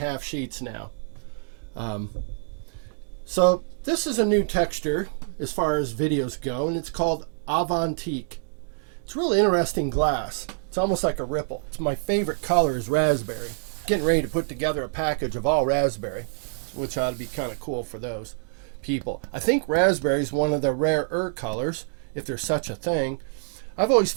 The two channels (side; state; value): left; silent; digital silence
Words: sheets now. So this is a new texture as far as videos go, and it's called Avantique. It's really interesting glass. It's almost like a ripple. It's my favorite color is raspberry. Getting ready to put together a package of all raspberry, which ought to be kind of cool for those people. I think raspberry is one of the rarer colors, if there's such a thing. I've always